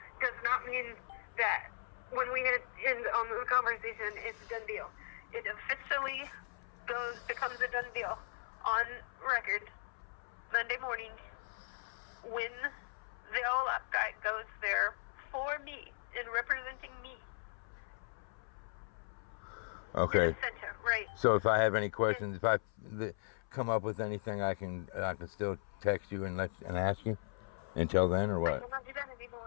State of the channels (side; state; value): right; silent; 52 dB below the other